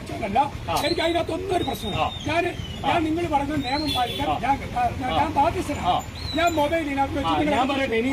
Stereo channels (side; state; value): both; identical; correlation 1.00